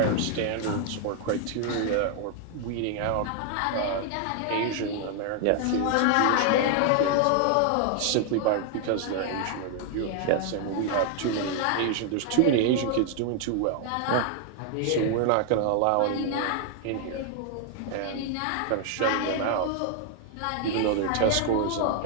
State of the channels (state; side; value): different; both; correlation 0.00